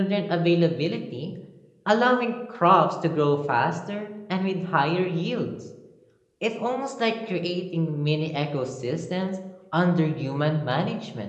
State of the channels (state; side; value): identical; both; correlation 1.00